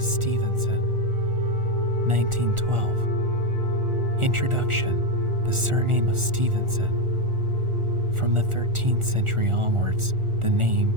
Stevenson, 1912. Introduction: the surname of Stevenson. From the 13th century onwards, the name,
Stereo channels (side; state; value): left; late; 1.4 ms